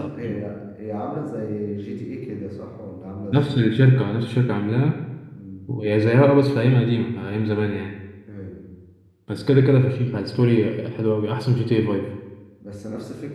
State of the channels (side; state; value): both; identical; correlation 1.00